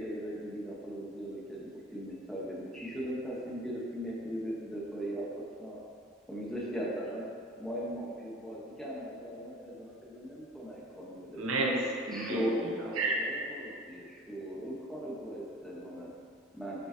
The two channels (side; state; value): both; normal; correlation 0.44